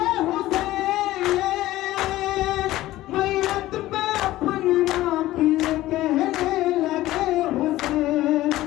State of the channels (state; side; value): quieter; right; 16.0 dB